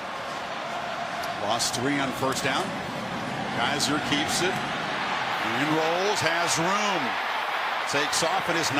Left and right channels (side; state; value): both; identical; correlation 1.00